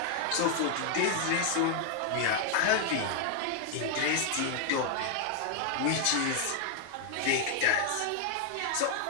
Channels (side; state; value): both; different; correlation 0.00